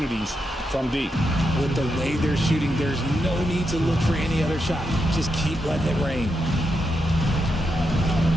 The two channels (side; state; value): both; normal; correlation 0.84